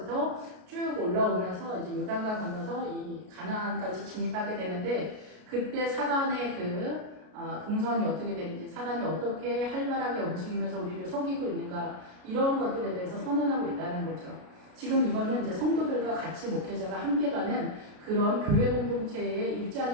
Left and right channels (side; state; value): left; late; 33 ms